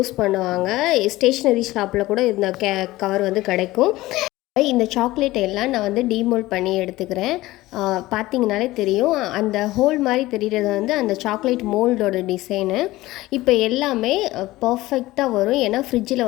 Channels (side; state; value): right; quieter; 17.9 dB